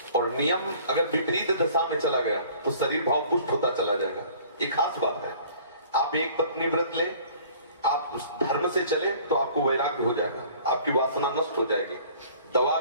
और नियम अगर विपरीत दशा में चला गया तो शरीर भाव पुष्ट होता चला जाएगा। ये खास बात है। आप एक पत्नी व्रत ले, आप उस धर्म से चले तो आपको वैराग्य हो जाएगा, आपकी वासना नष्ट हो जाएगी। दवा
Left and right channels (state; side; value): inverted; both; correlation -0.51